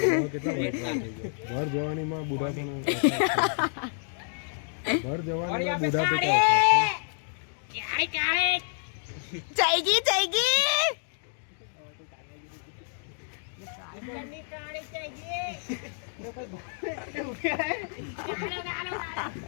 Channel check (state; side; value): silent; right; 58 dB below the other